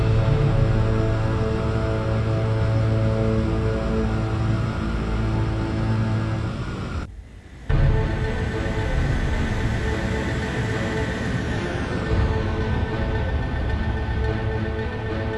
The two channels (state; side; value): identical; both; correlation 1.00